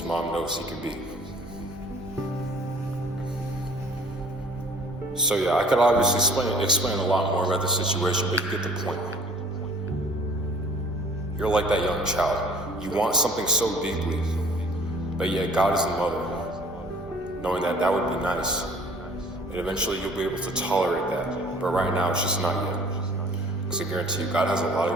mom knows he can be. So yeah, I could obviously explain a lot more about the situation, but you get the point. You're like that young child. You want something so deeply, but yet God is the mother, knowing that that would be nice. And eventually you'll be able to tolerate that. But right now, it's just not yet. Because I guarantee you, God has a lot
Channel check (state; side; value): normal; both; correlation 0.52